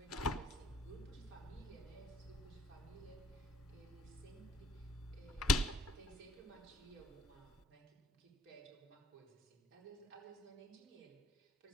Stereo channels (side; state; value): both; normal; correlation 0.63